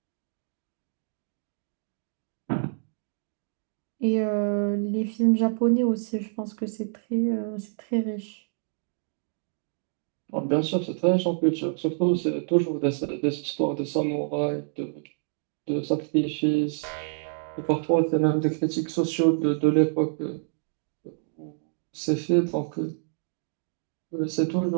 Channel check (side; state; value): left; silent; digital silence